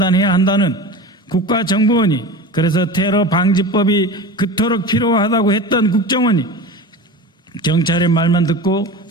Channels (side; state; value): both; normal; correlation 0.31